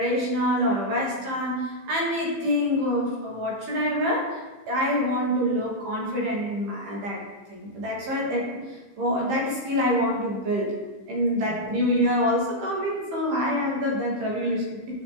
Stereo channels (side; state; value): left; late; 15 ms